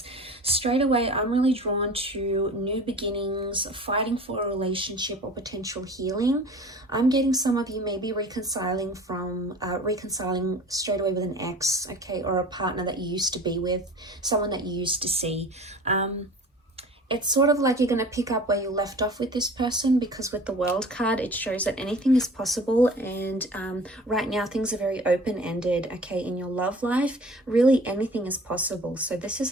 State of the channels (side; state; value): both; normal; correlation 0.43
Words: Straight away, I'm really drawn to new beginnings, fighting for a relationship or potential healing. I'm getting some of you maybe reconciling straight away with an ex, okay, or a partner that you used to be with, someone that you used to see. It's sort of like you're going to pick up where you left off with this person, because with the World card, it shows that anything is possible. And right now, things are very open-ended, okay, in your love life. Really, anything is possible. So this is